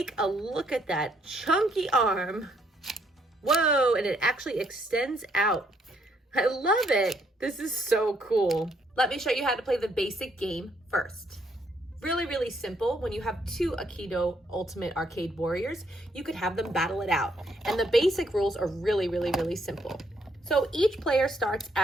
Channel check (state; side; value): normal; both; correlation 0.71